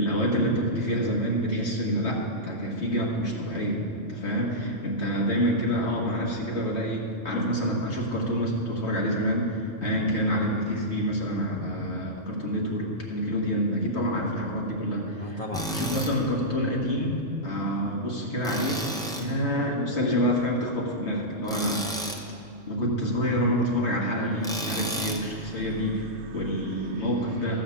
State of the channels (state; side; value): normal; both; correlation -0.11